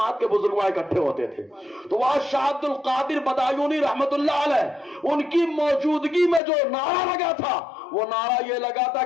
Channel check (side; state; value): right; drops out; at 6.4 s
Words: کے بزرگ اکٹھے ہوتے تھے، تو وہاں شاہ عبد القادر بدایونی رحمت اللہ علیہ ان کی موجودگی میں جو نعرہ لگا تھا وہ نعرہ یہ لگا تھا